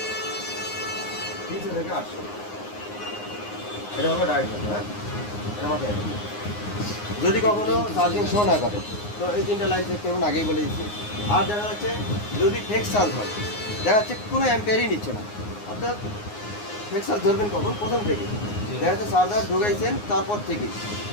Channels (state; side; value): late; right; 9.6 ms